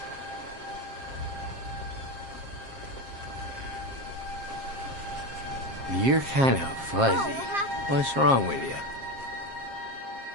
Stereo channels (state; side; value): late; left; 7.5 ms